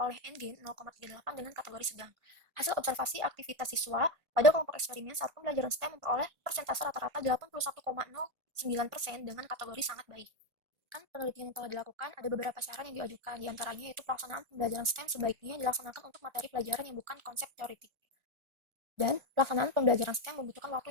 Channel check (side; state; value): left; late; 1.5 ms